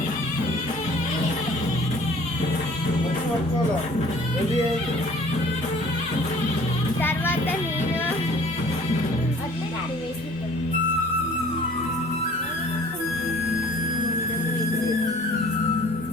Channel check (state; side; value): normal; both; correlation 0.51